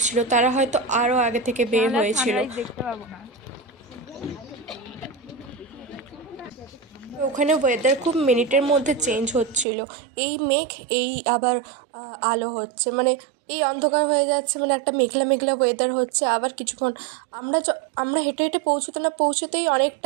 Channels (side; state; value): left; drops out; at 9.7 s